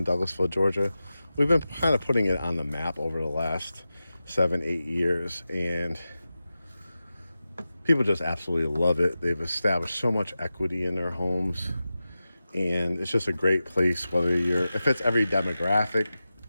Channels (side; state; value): both; inverted; correlation -0.94